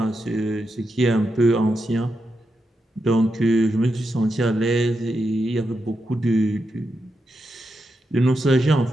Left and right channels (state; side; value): normal; both; correlation 0.86